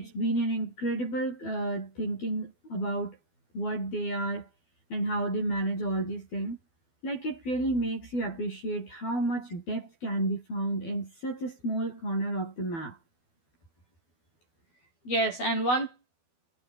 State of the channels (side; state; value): right; late; 12 ms